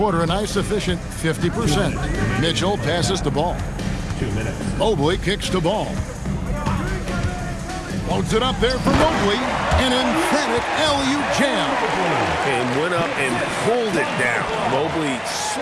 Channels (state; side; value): identical; both; correlation 1.00